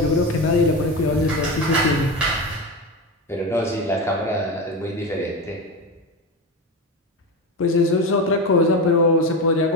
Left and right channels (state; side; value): normal; both; correlation 0.20